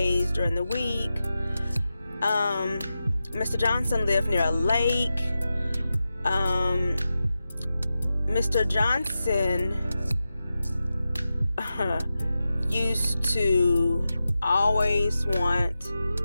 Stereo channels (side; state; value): both; inverted; correlation -0.91